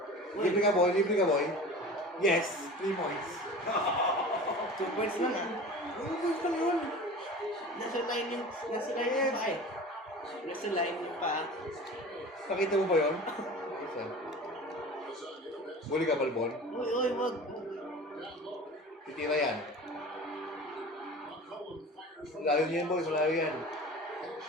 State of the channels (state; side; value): normal; both; correlation 0.37